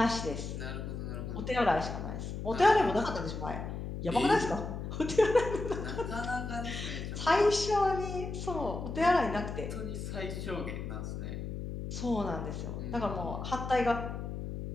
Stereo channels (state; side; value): noise; left; hum, 6 dB below the sound